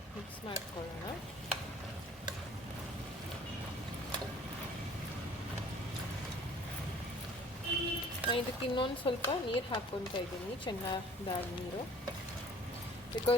ಮಿಕ್ಸ್ ಮಾಡ್ಕೊಳ್ಳೋಣ. ಇದಕ್ಕೆ ಇನ್ನೊಂದು ಸ್ವಲ್ಪ ನೀರು ಹಾಕ್ಕೊತಾ ಇದ್ದೀನಿ, ಚೆನ್ನಾದಾದ ನೀರು,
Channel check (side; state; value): both; normal; correlation 0.52